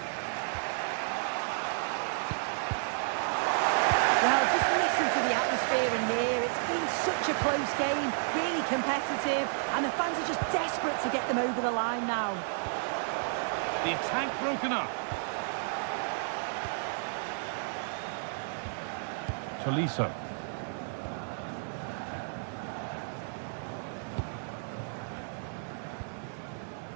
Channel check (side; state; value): left; silent; 57 dB below the other